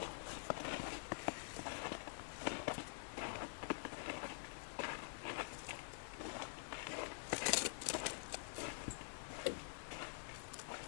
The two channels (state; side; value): silent; right; digital silence